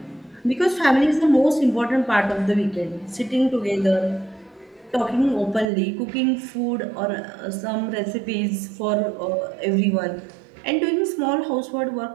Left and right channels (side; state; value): left; drops out; at 5.7 s